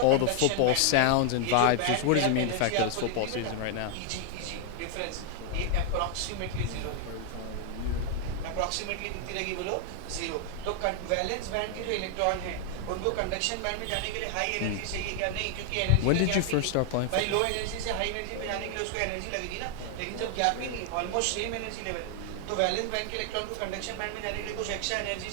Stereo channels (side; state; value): both; different; correlation 0.00